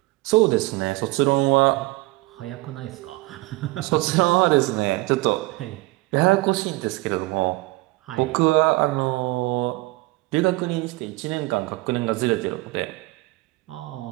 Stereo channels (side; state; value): left; quieter; 21.3 dB